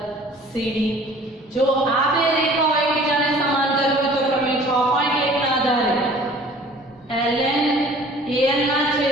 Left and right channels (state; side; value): normal; both; correlation 0.49